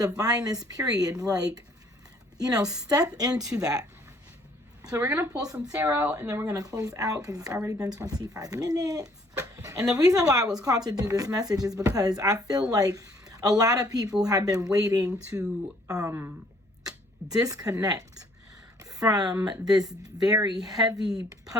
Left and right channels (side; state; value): both; normal; correlation 0.62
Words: period. Like, you know, step into that. So we're going to pull some tarot, and then we're going to close out because it's already been 25 minutes. And the reason why I was called to do this message is because I feel like a lot of people have been waiting to disconnect from this very heavy